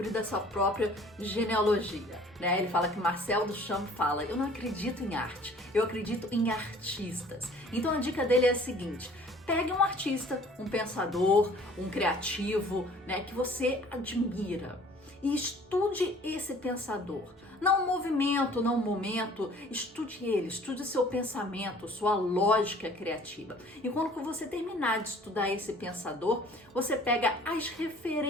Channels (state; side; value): normal; both; correlation 0.52